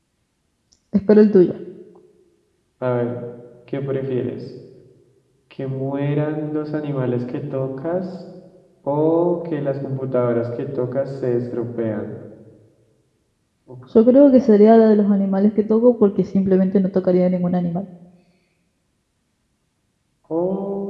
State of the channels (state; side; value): identical; both; correlation 1.00